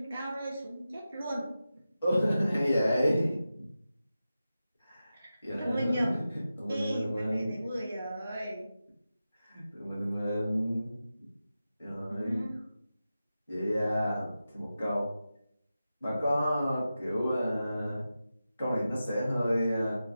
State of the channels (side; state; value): both; inverted; correlation -0.92